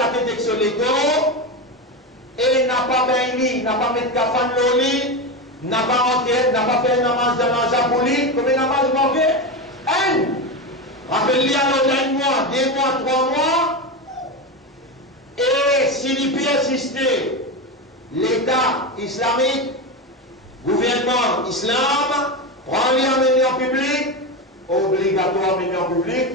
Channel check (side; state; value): both; normal; correlation 0.17